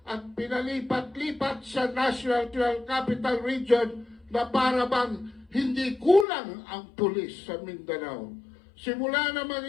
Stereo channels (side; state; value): right; drops out; at 6.2 s